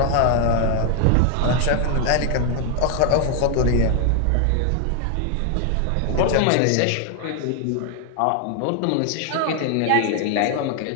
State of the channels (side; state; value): both; different; correlation 0.00